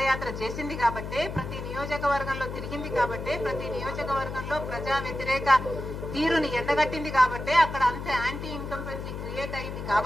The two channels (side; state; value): left; noise; hum, 7 dB below the sound